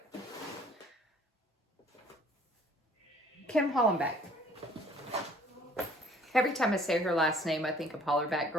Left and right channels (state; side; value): normal; both; correlation 0.56